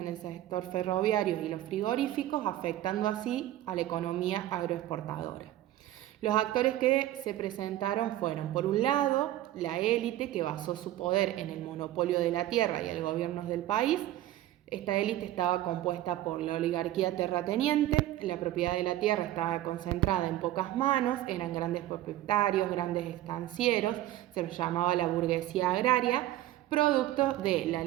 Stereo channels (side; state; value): left; quieter; 14.2 dB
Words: el sector ferroviario y los frigoríficos, afectando así a la economía agroexportadora. Los actores que se presentaron fueron, por un lado, la élite, que basó su poder en el monopolio de la tierra y el gobierno del país. Esta élite estaba compuesta por la oligarquía terrateniente, la propiedad de la tierra estaba concentrada en pocas manos, eran grandes propietarios, grandes estancieros, se los llamaba la burguesía agraria, producto de la